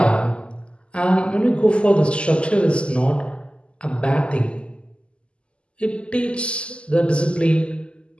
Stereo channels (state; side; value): late; right; 0.053 ms